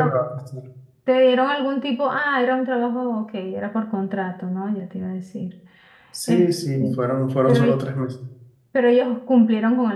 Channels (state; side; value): identical; both; correlation 1.00